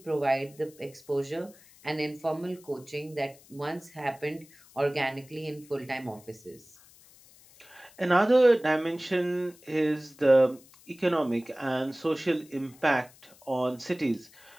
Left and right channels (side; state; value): left; noise; hiss, 25 dB below the sound